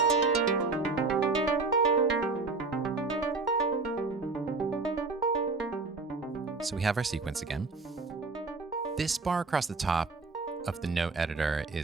So we have our sequence again. This bar across the top of the note editor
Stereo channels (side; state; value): left; quieter; 3.9 dB